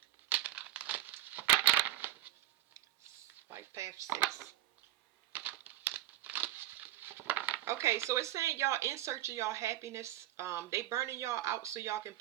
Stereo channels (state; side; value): quieter; left; 14.6 dB